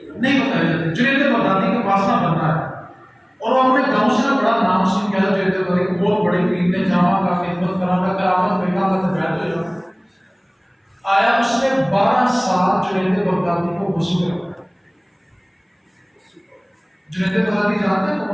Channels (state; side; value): identical; both; correlation 1.00